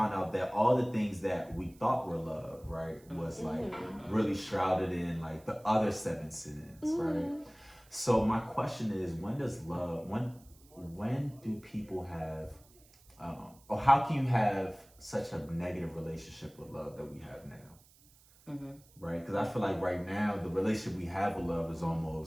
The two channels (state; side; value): noise; right; hiss, 27 dB below the sound